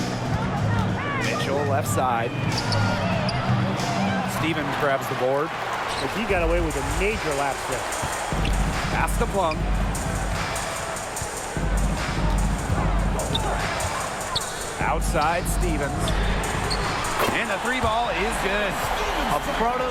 Mitchell left side. Stevens grabs the board. But he got away with a major lapse there. Pass to Plum. Outside Stevens. And the 3 ball is good. A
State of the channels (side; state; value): both; identical; correlation 1.00